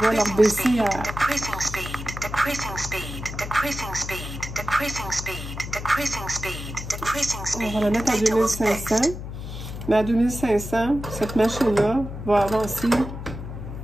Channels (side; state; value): left; noise; hum, 9 dB below the sound